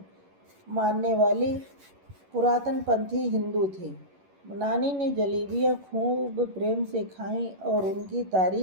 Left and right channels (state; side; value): late; left; 11 ms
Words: मानने वाली पुरातनपंथी हिंदू थी। नानी ने जलेबियां खूब प्रेम से खाईं और उनकी